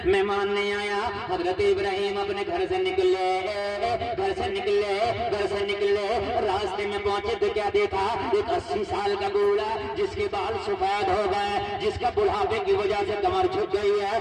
مہمان نہیں آیا، حضرت ابراہیم اپنے گھر سے نکلے، راستے میں پہنچے تو کیا دیکھا؟ ایک 80 سال کا بوڑھا جس کے بال سفید ہو گئے، جس کا بڑھاپے کی وجہ سے کمر جھک گئی ہے۔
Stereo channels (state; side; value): identical; both; correlation 1.00